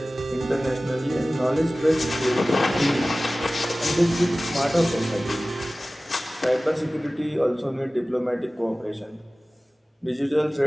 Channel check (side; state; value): both; normal; correlation 0.97